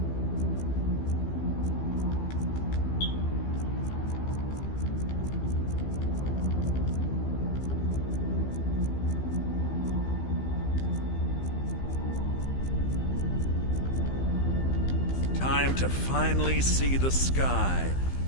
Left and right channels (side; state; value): right; late; 15 ms